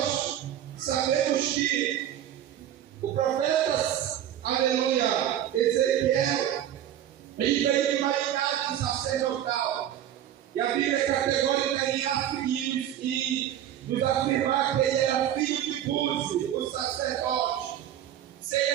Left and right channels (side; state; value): left; quieter; 11.1 dB